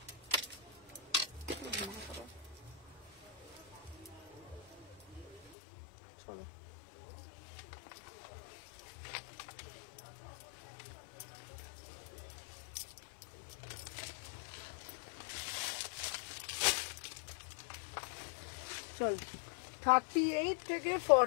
চলো চল 38 থেকে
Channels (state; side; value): drops out; right; at 5.5 s